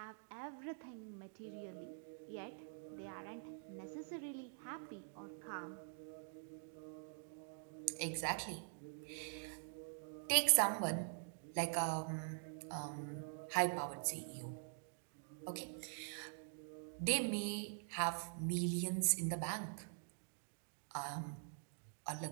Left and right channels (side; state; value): left; silent; digital silence